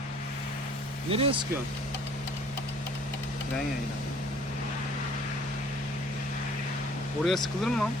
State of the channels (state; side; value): normal; both; correlation 0.55